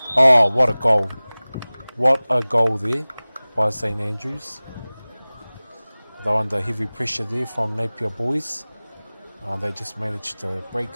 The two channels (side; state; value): both; inverted; correlation -0.99